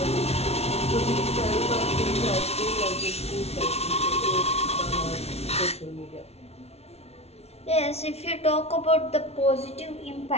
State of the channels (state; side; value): late; right; 0.31 ms